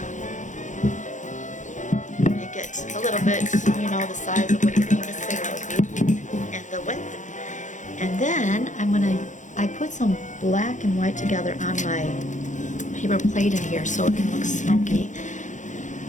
Make it a little bit, you know, the size of what you think the cigarette would be, and the width. And then I put some black and white together on my paper plate in here so it can look smoky.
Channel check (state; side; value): late; right; 0.36 ms